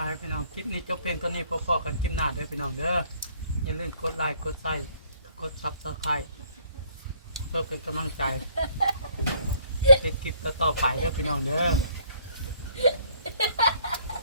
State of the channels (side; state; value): both; inverted; correlation -0.62